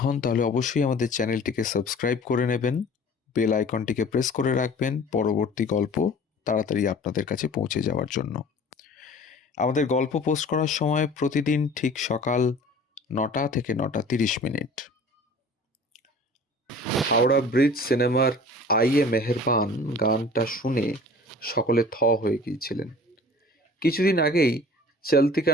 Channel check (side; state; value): both; normal; correlation 0.45